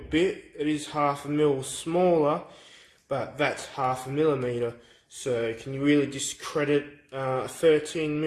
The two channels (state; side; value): identical; both; correlation 1.00